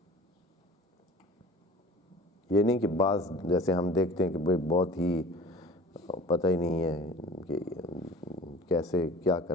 یہ نہیں کہ بعض جیسے ہم دیکھتے ہیں کہ بھئی بہت ہی پتہ ہی نہیں ہے کہ کیسے کیا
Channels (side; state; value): both; normal; correlation 0.43